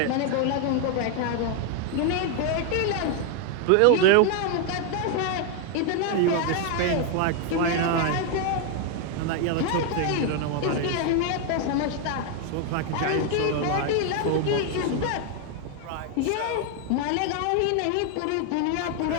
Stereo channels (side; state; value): both; different; correlation 0.01